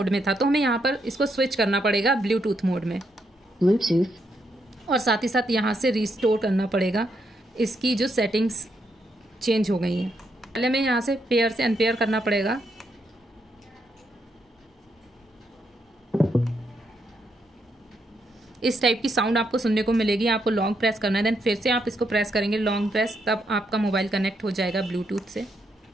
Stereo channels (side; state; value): both; normal; correlation 0.78